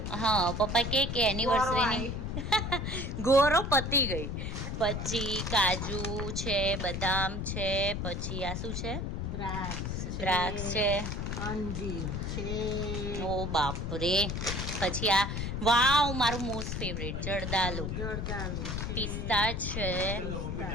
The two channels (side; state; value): left; noise; rumble, 3 dB below the sound